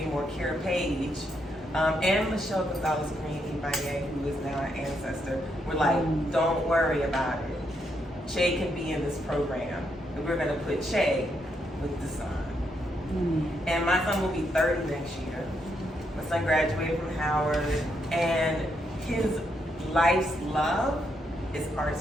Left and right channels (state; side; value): normal; both; correlation 0.78